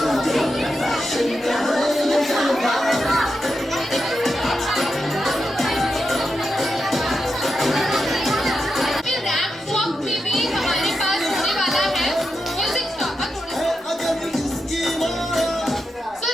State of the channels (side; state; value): both; normal; correlation 0.87